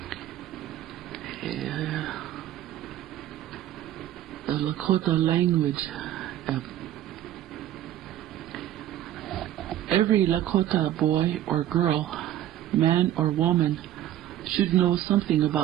the Lakota language. Every Lakota boy or girl, man or woman, should know something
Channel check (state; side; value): quieter; left; 12.5 dB